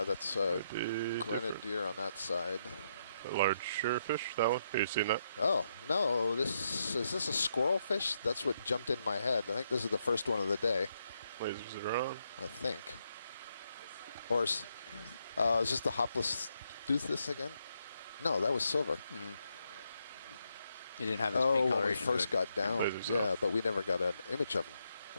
that's grenadier on that side. A large surefish, that one? Have you seen that? Oh, no, is this a squirrel fish? That's what jumped in my head. I think this is the first one of the day. Lasers are on. I think. Or is this the Hopless Toothus again? No, that was silver. Mm-hmm. He didn't have his pink when we coloration. first got down. Yeah, but we never got an image of him.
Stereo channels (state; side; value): inverted; both; correlation -0.79